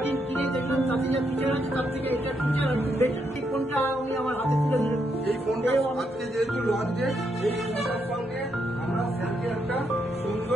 কিনে দেখলাম তাতে যা ফিচার আছে তার থেকে এটা ফিচার একটু বেটার। এই ফোনটা আমি আমার হাতে তুলে দিলাম। এই ফোনটা আজকে যেহেতু লঞ্চ ডেট, এই ফোনটার সঙ্গে আমরা স্যারকে একটা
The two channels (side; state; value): both; normal; correlation 0.78